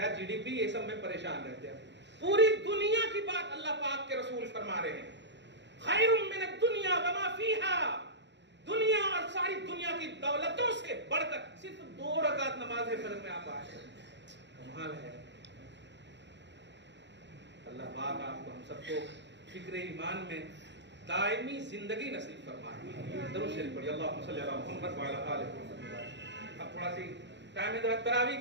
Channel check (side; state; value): left; late; 0.52 ms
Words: جی ڈی پی یہ سب میں پریشان رہتے ہیں. پوری دنیا کی بات اللہ پاک کے رسول فرما رہے ہیں, خیر من الدنیا وما فیہا, دنیا اور ساری دنیا کی دولتوں سے بڑھ کر صرف 2 رکعت نماز فجر میں آپ آئے. کمال ہے. اللہ پاک آپ کو ہم سب کو فکر ایمان میں دائمی زندگی نصیب فرمائے. درود شریف پڑھیے, اللہم صلی علی محمد وعلی آل محمد. اب تھوڑا سی ٹائم ہے تراویح